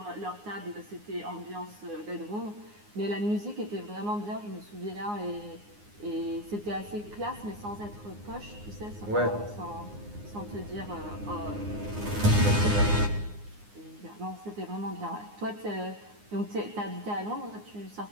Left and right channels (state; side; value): late; left; 9.7 ms